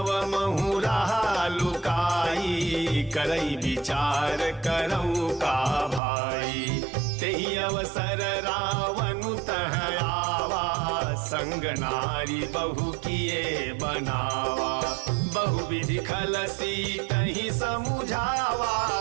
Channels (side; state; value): left; drops out; at 6.0 s